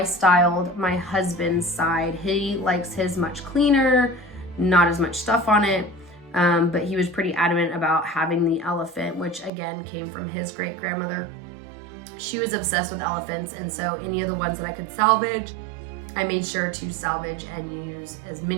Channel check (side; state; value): left; drops out; at 9.5 s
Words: styled my husband's side. He likes his much cleaner, not as much stuff on it, but he was pretty adamant about having the elephant, which again came from his great grandmother. She was obsessed with elephants, and so any of the ones that I could salvage, I made sure to salvage and use as